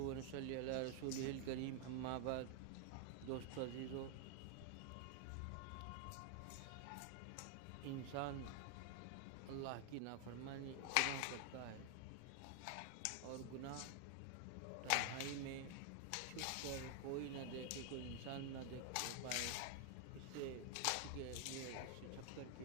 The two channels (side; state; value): both; different; correlation 0.00